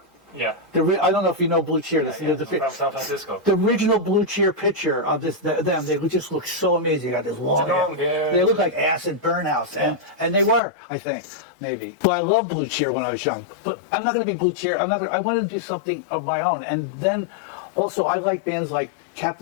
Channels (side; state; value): right; drops out; at 10.6 s